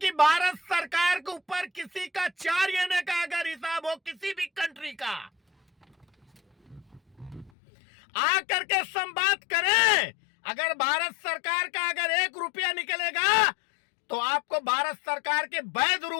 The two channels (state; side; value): drops out; right; at 7.5 s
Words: भारत सरकार के ऊपर किसी का 4 आने का अगर हिसाब हो किसी भी कंट्री का, आकर के संवाद करें। अगर भारत सरकार का अगर 1 रुपया निकलेगा तो आपको भारत सरकार के वैध